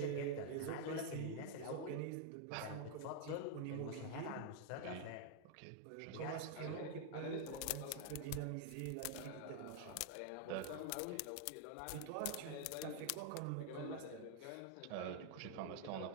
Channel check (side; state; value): both; different; correlation 0.00